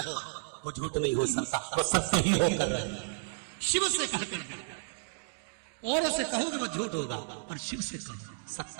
वो झूठ नहीं हो सकता, वो सत्य ही होकर रहे। शिव से कहकर और से कहोगे वो झूठ होगा, और शिव से कहो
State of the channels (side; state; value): left; silent; digital silence